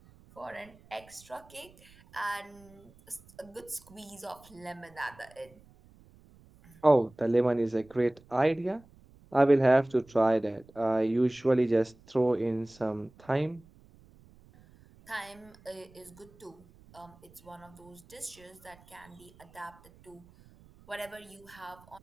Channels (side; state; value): right; noise; rumble, 26 dB below the sound